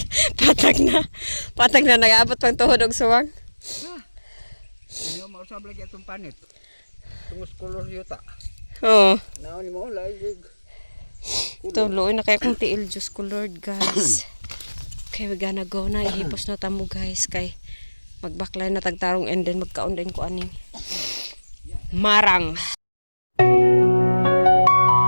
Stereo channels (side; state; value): both; inverted; correlation -1.00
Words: Patag na. Patag na nag-aabot pang tuhod og suwang. Ano mo usab lagi atong panit. Tungos color yuta. Oh, Naon ni mo laig. ito, luoy na kaya kong tiil, Diyos ko Lord, guys. Okay, we gonna go na. Ihipos na tamo, guys. Kay magbaklay na tagtarong and then magkaon din ko aning marang.